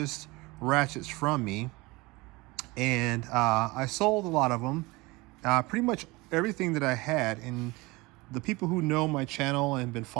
ratchets from me, and I sold a lot of them. Pretty much everything that I had, and the people who know my channel and been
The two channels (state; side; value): quieter; left; 23.3 dB